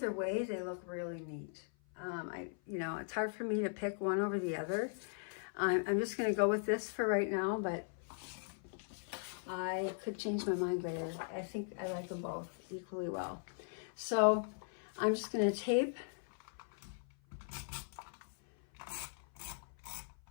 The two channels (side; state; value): right; silent; 52 dB below the other